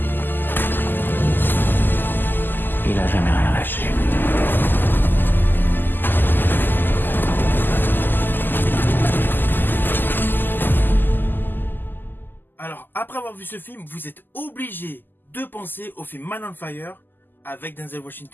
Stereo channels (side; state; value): right; late; 0.091 ms